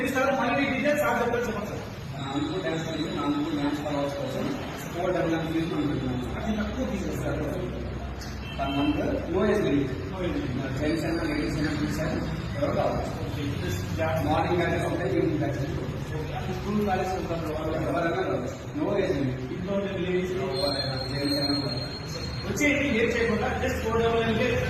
మళ్ళీ డీటెయిల్స్ ఆ చెప్పండి సార్. నాలుగు డాన్స్ అనేది నాలుగు డాన్స్ ఫాలోవర్స్ కోసం 499 తీసుకుంటున్నాను. అతి తక్కువ తీసేస్తారు. One month no age limit. Gents అయినా లేడీస్ అయినా తీసారు ఎవరు కావాలి. మార్నింగ్ అయితే ఉంటాయి, ఈవినింగ్ అయితే స్కూల్ కాలేజ్ ఎవరైనా నో ఏజ్ లిమిట్. ఇంట్లో లేడీస్ జెంట్స్ అయినా వచ్చేది లేట్ చేయకుండా జస్ట్ 499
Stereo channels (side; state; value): both; identical; correlation 1.00